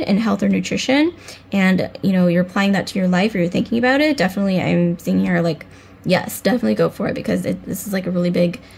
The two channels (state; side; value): identical; both; correlation 1.00